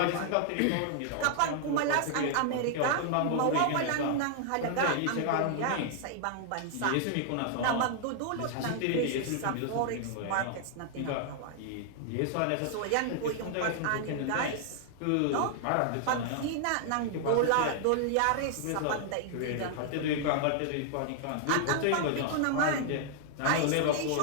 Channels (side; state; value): both; different; correlation 0.00